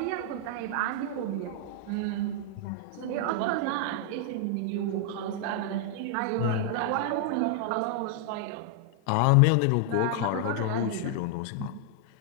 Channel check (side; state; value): both; different; correlation -0.01